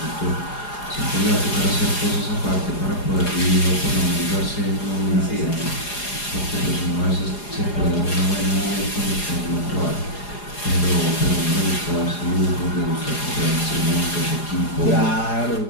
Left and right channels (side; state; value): right; late; 4.8 ms